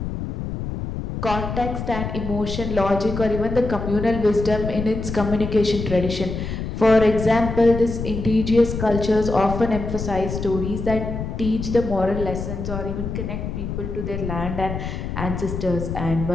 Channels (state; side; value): noise; left; rumble, 5 dB below the sound